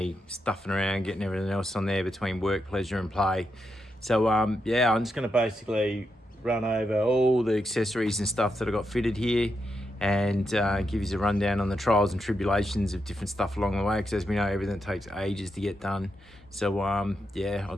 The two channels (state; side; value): normal; both; correlation 0.84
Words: stuffing around, getting everything else on there between work, pleasure and play. So yeah, I'm just gonna basically run over all the accessories and stuff that I got fitted here and give you a rundown on the trials and tribulations of different stuff along the way, because as we know, everything takes ages to get done. So yeah, I'll